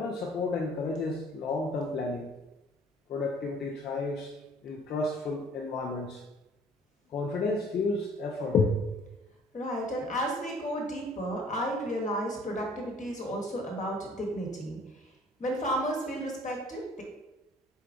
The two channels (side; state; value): both; normal; correlation 0.55